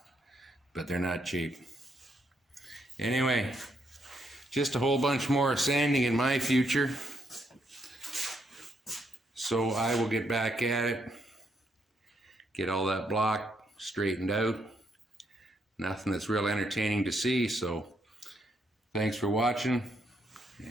but they're not cheap. Anyway, just a whole bunch more sanding in my future. So I will get back at it, get all that block straightened out. Nothing that's real entertaining to see, so thanks for watching,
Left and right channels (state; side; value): normal; both; correlation 0.76